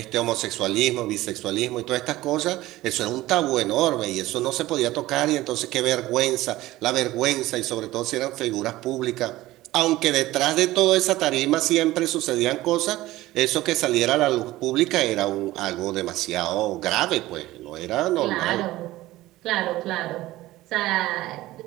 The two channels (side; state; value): left; quieter; 17.0 dB